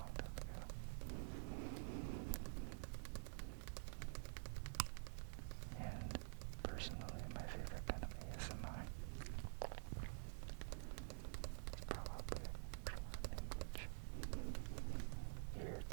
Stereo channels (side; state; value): left; silent; digital silence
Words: time ago. And personally, my favorite kind of ASMR is probably language,